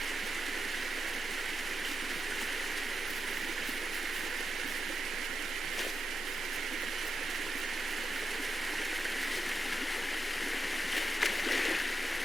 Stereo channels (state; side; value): normal; both; correlation 0.88